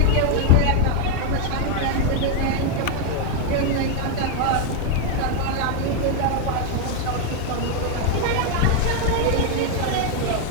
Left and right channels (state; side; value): different; both; correlation 0.01